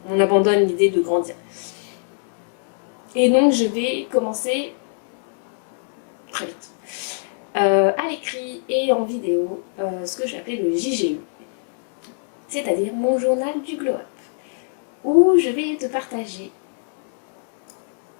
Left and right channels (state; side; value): silent; right; 64 dB below the other